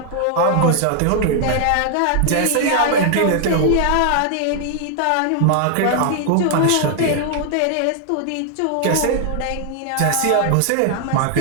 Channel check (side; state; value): both; different; correlation 0.00